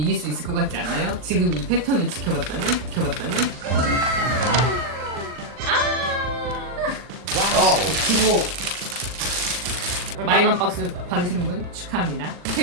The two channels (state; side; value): late; left; 40 ms